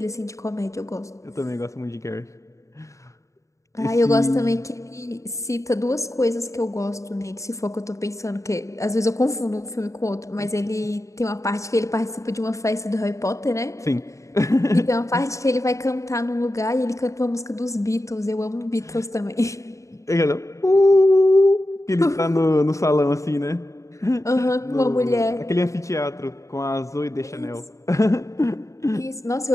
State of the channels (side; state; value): right; late; 0.15 ms